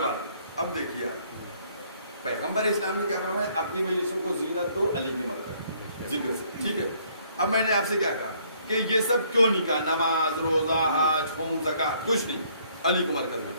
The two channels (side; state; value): both; inverted; correlation -0.65